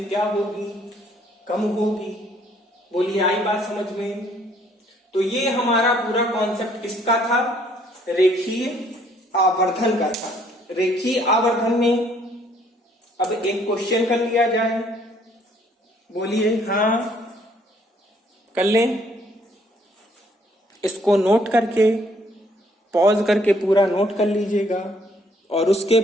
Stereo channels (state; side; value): normal; both; correlation 0.64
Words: क्या होगी, कम होगी। बोलिए, आई बात समझ में? तो ये हमारा पूरा कॉन्सेप्ट किसका था, रेखीय आवर्धन का था। रेखीय आवर्धन में अब एक क्वेश्चन कर लिया जाए। बोलिए, हाँ कर लें। इसको नोट करके, पॉज करके पूरा नोट कर लीजिएगा और उसके